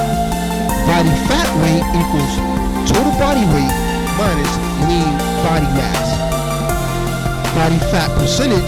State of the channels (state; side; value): identical; both; correlation 1.00